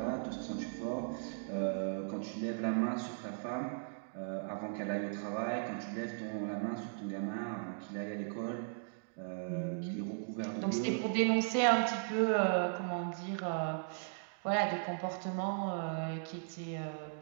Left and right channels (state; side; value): silent; left; digital silence